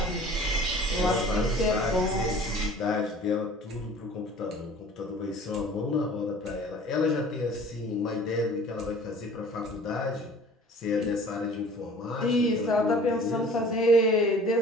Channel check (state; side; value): normal; both; correlation 0.47